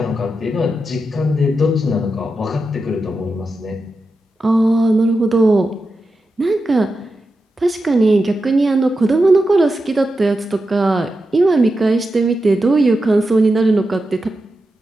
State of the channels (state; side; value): normal; both; correlation 0.89